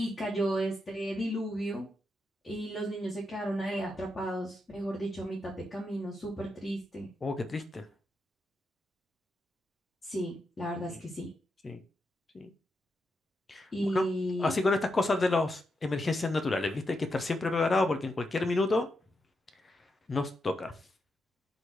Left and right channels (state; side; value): normal; both; correlation 0.85